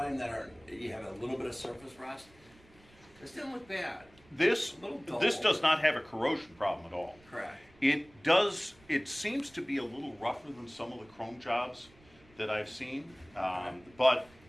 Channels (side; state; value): right; noise; rumble, 27 dB below the sound